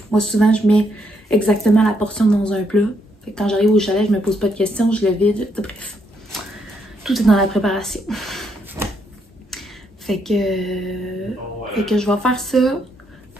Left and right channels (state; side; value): normal; both; correlation 0.76